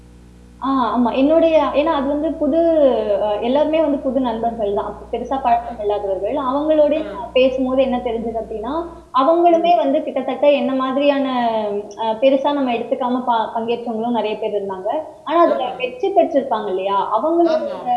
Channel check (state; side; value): identical; both; correlation 1.00